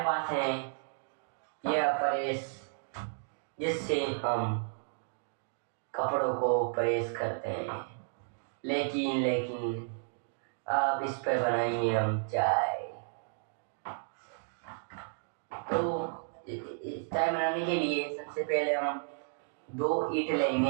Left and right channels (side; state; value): left; silent; digital silence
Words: पास है यह परेश जिससे हम कपड़ों को प्रेस करते हैं, लेकिन अब इस पर बनाएंगे हम चाय। तो चाय बनाने के लिए सबसे पहले हम 2 ईंट